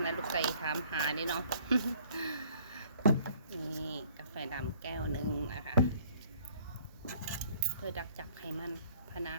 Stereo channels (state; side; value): inverted; both; correlation -0.57